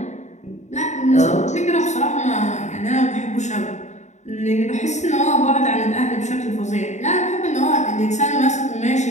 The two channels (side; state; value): right; late; 0.34 ms